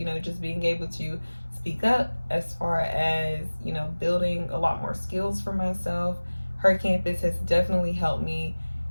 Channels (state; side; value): inverted; both; correlation -1.00